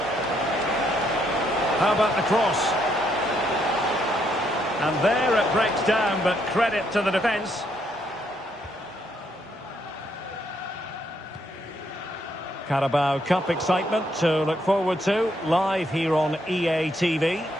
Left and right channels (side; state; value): both; normal; correlation 0.74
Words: How about the cross? And there it breaks down, but credit to the defence. Carabao Cup excitement to look forward to, live here on EA TV.